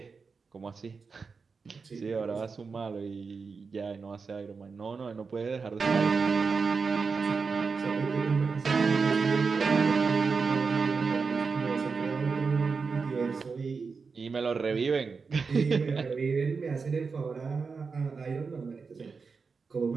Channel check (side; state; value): left; quieter; 4.9 dB